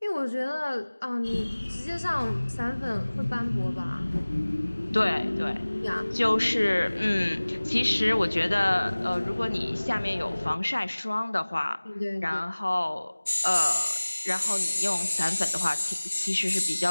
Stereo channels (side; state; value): both; inverted; correlation -1.00